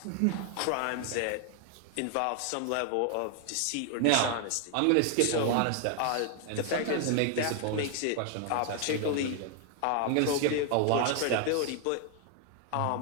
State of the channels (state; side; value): different; both; correlation 0.00